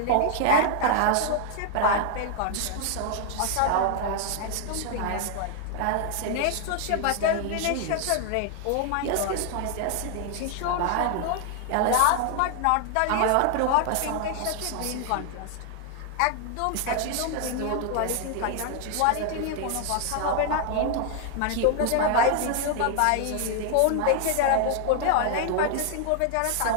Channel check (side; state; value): both; different; correlation 0.00